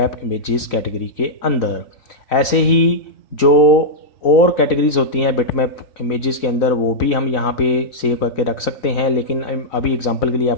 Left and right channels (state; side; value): late; right; 4.0 ms